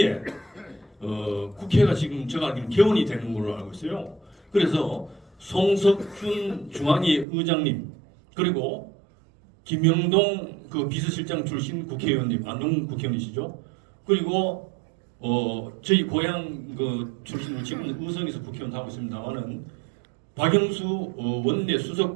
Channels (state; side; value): drops out; left; at 7.2 s